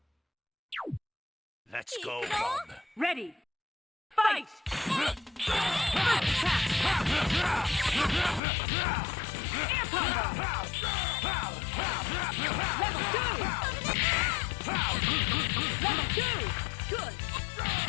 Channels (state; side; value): drops out; right; at 8.4 s